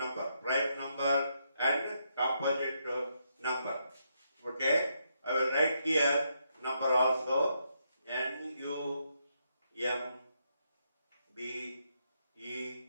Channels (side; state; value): both; inverted; correlation -0.79